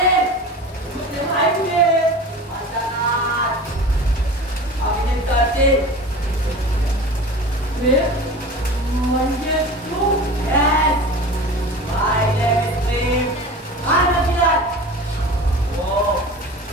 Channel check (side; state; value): both; normal; correlation 0.35